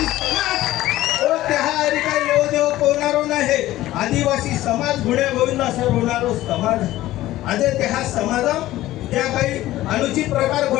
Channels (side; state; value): right; quieter; 15.6 dB